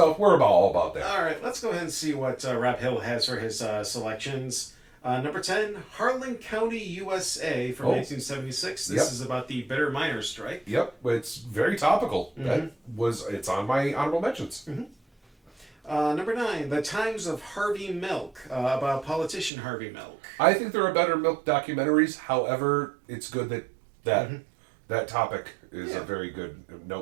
we're all about that. All right, let's go ahead and see what Rob Hill has for his selections. Number 10, Harlan County, USA from 1976. This is about the bitter miners' strike. Yep, it's very topical. Mm-hmm. It's on my honorable mentions. Mm-hmm. Number 9, The Times of Harvey Milk, about politician Harvey Milk. I think there are better milk documentaries. However, it's good that topic is a very good,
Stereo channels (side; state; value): left; drops out; at 19.5 s